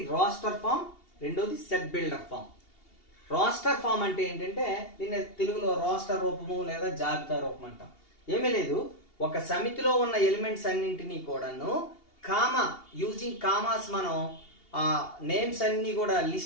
రోస్టర్ ఫామ్, రెండోది set builder form. Roster form అంటే ఏంటంటే దీన్ని తెలుగులో రోస్టర్ రూపము లేదా జాబితా రూపం అంటాం. ఏమీ లేదు, ఒక సమితిలో ఉన్న ఎలిమెంట్స్ అన్నింటినీ కూడాను యూజింగ్ కామాస్ మనం నేమ్స్ అన్ని కూడా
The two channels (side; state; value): right; late; 2.8 ms